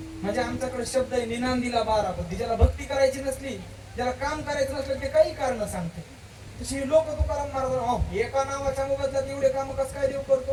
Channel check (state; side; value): identical; both; correlation 1.00